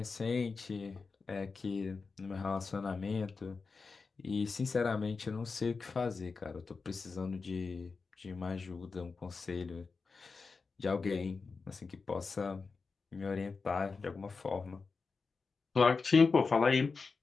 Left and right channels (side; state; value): right; quieter; 4.6 dB